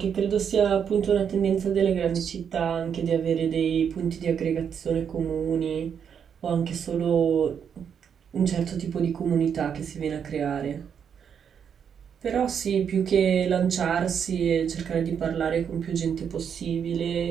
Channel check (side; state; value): left; quieter; 7.7 dB